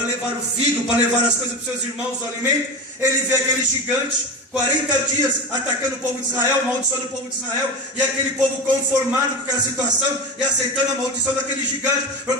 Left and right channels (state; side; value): normal; both; correlation 0.24